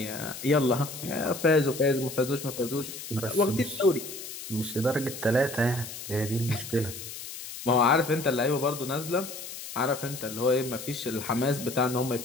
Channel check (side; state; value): left; noise; hiss, 10 dB below the sound